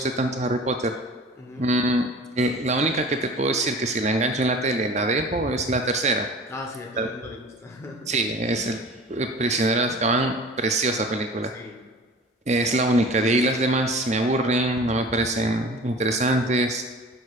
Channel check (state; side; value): normal; both; correlation 0.41